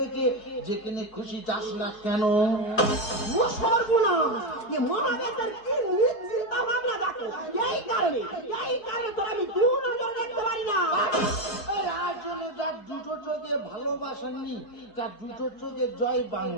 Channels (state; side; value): late; right; 4.5 ms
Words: যেখানে খুশি যাস না কেন? ও সর্বনাশ, এ মহাদেবের কি চিন্তা ভাবনা দেখো। এই কারণে তোর আমি দু নজর দেখতে পারি না। আর জন্য যার দুটো চোখে ভালোবাসা নি, তার দুটো চোখে জয়